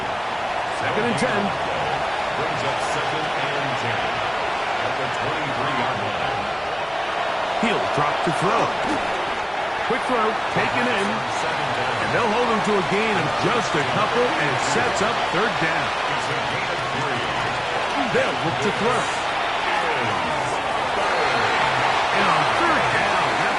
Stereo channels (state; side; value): identical; both; correlation 1.00